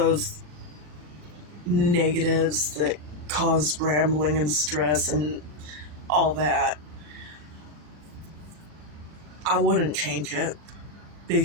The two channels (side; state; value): left; late; 40 ms